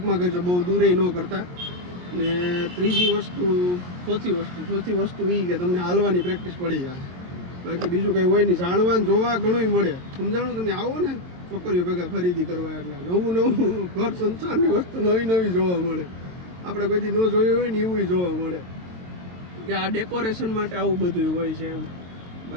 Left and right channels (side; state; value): left; late; 22 ms